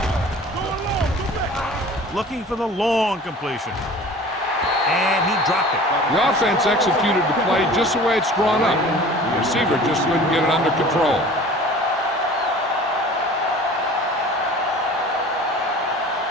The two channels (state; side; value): normal; both; correlation 0.44